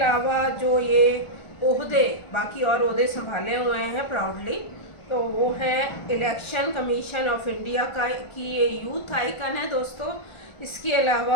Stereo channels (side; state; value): right; late; 1.4 ms